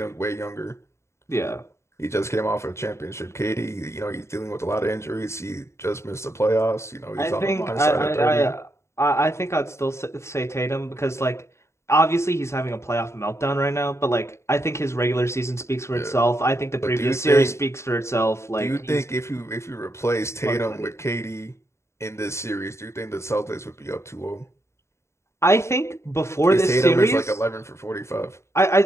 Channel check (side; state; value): right; late; 0.13 ms